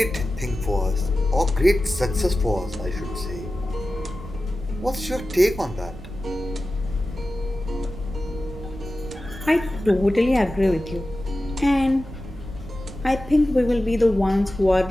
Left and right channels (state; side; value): noise; right; rumble, 14 dB below the sound